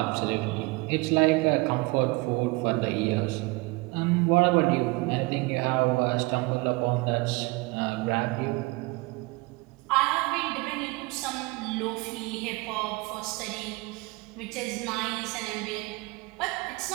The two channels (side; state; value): left; quieter; 24.3 dB